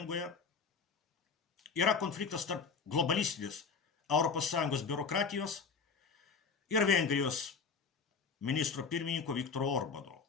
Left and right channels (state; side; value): quieter; right; 5.4 dB